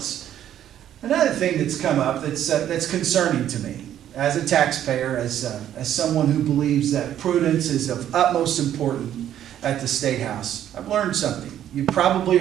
another thing that's come up that's concerning to me as a taxpayer, as someone who believes that prudence is of utmost importance at the State House, I've learned something. You've probably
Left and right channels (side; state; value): left; quieter; 11.0 dB